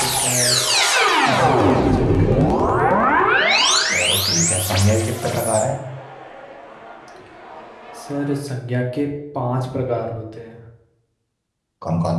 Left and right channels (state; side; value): identical; both; correlation 1.00